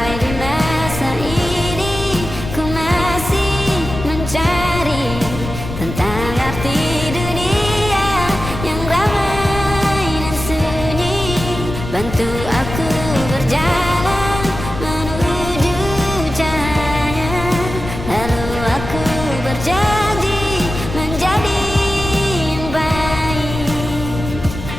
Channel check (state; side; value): noise; left; rumble, 8 dB below the sound